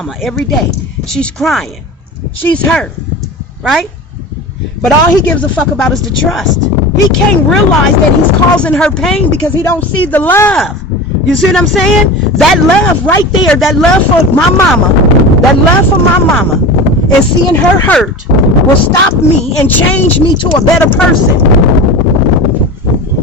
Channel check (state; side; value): normal; both; correlation 0.31